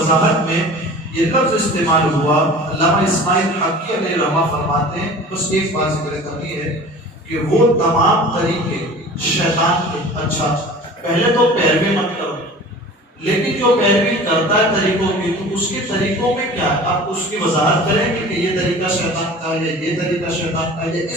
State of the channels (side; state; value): both; normal; correlation 0.41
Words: میں یہ لفظ استعمال ہوا، علامہ اسماعیل حقی علیہ رحمہ فرماتے ہیں، بس ایک بات ذکر کرنی ہے کہ وہ تمام طریقے شیطان کے، اچھا پہلے تو پیروی مت کرو، لیکن جو پیروی کرتا ہے طریقوں کی تو اس کے طریقوں میں کیا ہے، آپ اس کی وضاحت کریں گے کہ یہ طریقہ شیطان کا ہے، یہ طریقہ شیطان کا ہے،